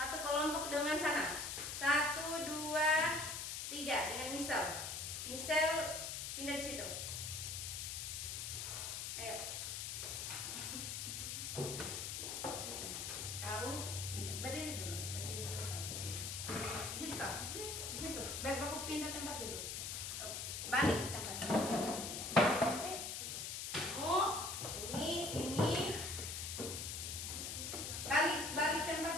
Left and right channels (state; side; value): noise; left; hiss, 4 dB below the sound